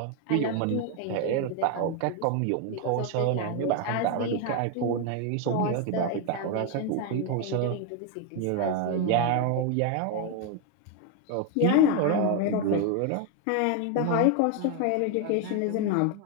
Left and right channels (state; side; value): different; both; correlation 0.01